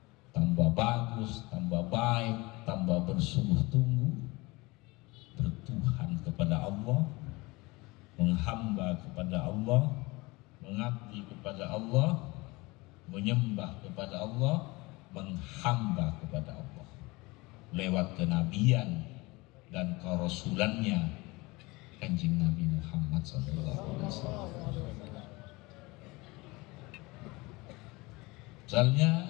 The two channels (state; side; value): quieter; right; 23.5 dB